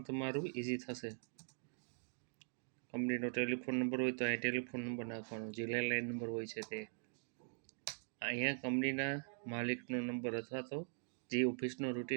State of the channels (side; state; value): left; silent; digital silence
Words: ઇઝી થશે. કંપનીનો ટેલિફોન નંબર હોય તો અહીં ટેલિફોન નંબર નાખવાનો, જે લેન્ડલાઇન નંબર હોય છે તે. અહીંયા કંપનીના માલિકનો નંબર અથવા તો જે ઓફિસનો